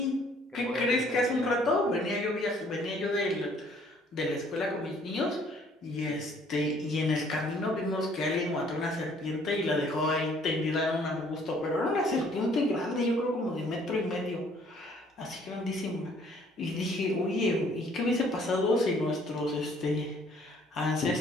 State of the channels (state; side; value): normal; both; correlation 0.60